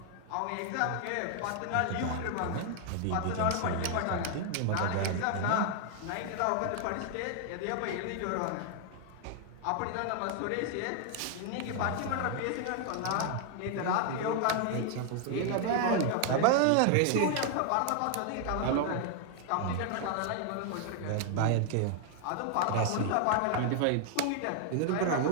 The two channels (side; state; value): both; different; correlation 0.00